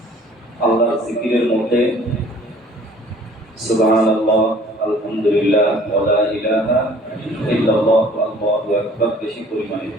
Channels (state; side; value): normal; both; correlation 0.52